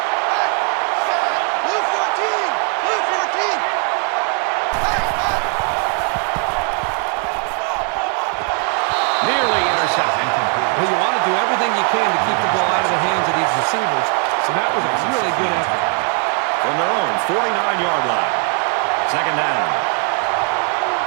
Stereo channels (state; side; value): quieter; left; 39.5 dB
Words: Nearly intercepted. Well, you want to do everything you can to keep the ball out of the hands of these receivers, so that was a really good effort. From their own 49-yard line. 2nd down.